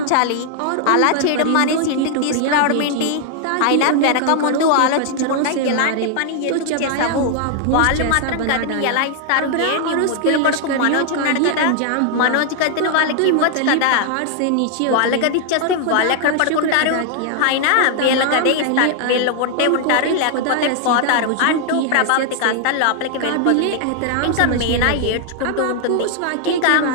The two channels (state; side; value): different; both; correlation 0.00